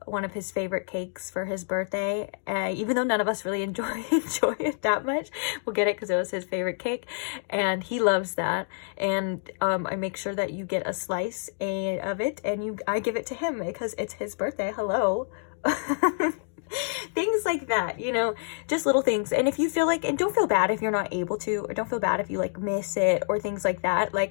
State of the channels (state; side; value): silent; right; digital silence